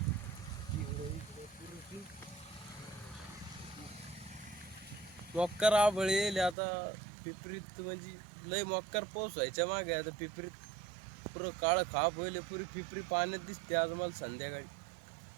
मक्कर आभळ येईल आता. पिपरीत म्हणजे लय मक्कर पाऊस व्हायच्या मागे आता पिपरीत पुरं काळं खाप होईल. पुरी पिपरी पाण्यात दिसते आज मला संध्याकाळी.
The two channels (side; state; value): left; drops out; at 6.6 s